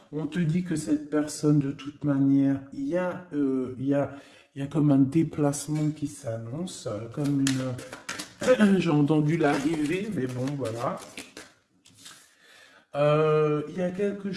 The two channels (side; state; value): both; identical; correlation 1.00